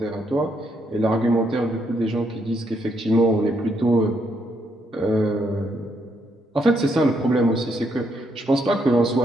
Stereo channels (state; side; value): normal; both; correlation 0.75